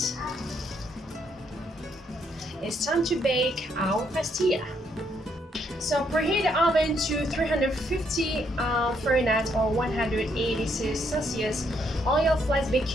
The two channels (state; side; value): normal; both; correlation 0.73